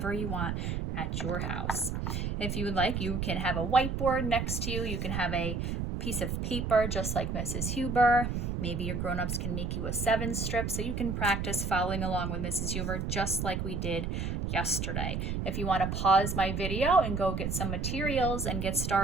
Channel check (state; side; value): noise; right; rumble, 2 dB below the sound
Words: you want at your house. If you would like, you can have a whiteboard next to you. You can have a piece of paper just like Mrs. Huber. Maybe your grown-ups can make you a 7 strip so you can practice following along with Mrs. Huber just like we did yesterday. If you want to pause my video and go get some materials and get